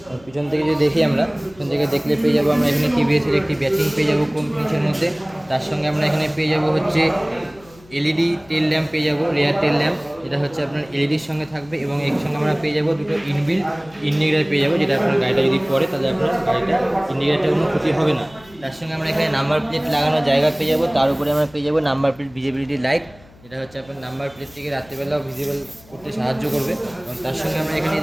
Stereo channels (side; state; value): left; noise; hum, 25 dB below the sound